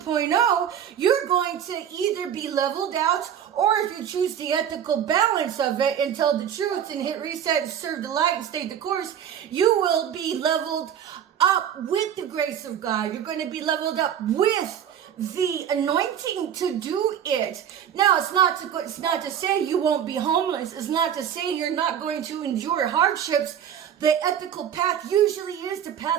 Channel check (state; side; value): quieter; left; 9.3 dB